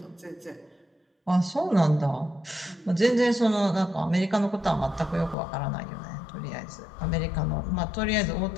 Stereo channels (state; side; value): drops out; right; at 5.4 s